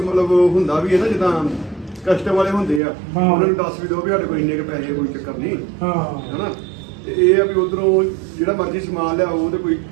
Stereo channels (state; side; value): drops out; left; at 2.8 s